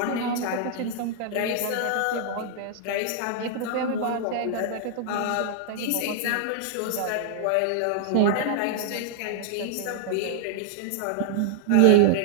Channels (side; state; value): both; different; correlation -0.01